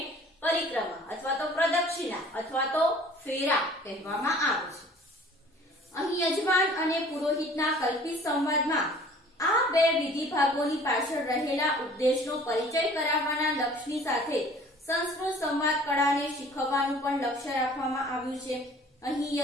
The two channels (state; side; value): normal; both; correlation 0.50